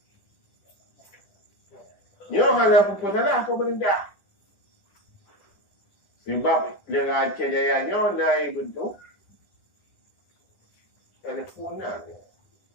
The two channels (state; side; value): late; right; 10 ms